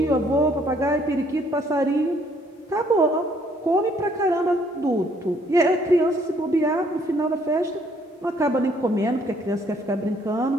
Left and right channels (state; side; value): normal; both; correlation 0.65